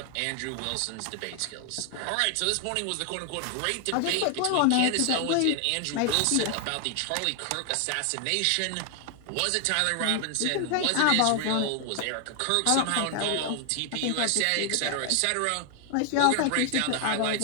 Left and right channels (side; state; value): both; different; correlation 0.00